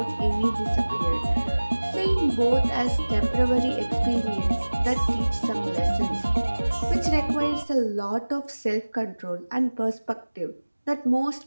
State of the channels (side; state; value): both; inverted; correlation -1.00